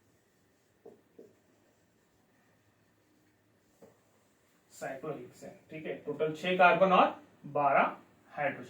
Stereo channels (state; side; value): identical; both; correlation 1.00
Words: साइक्लोहेक्सेन, ठीक है। टोटल 6 कार्बन और 12